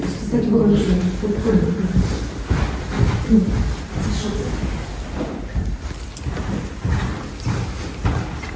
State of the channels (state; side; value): identical; both; correlation 1.00